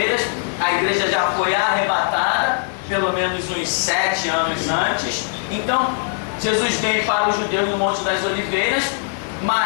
A igreja já foi arrebatada, pelo menos uns 7 anos antes. Então, Jesus vem para os judeus no Monte das Oliveiras,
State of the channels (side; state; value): right; silent; 66 dB below the other